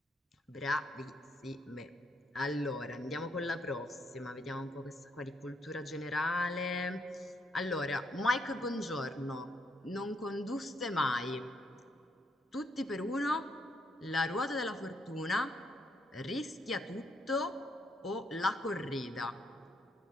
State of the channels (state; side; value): normal; both; correlation 0.74